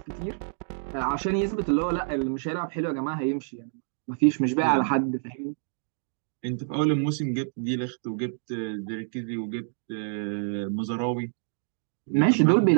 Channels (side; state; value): left; silent; digital silence